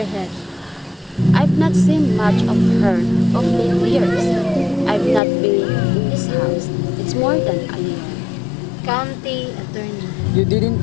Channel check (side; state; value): right; drops out; at 5.2 s